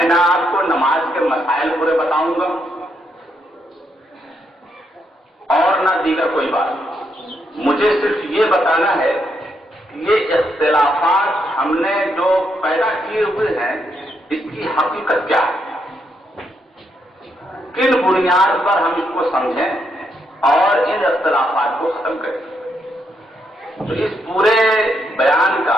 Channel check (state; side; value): normal; both; correlation 0.78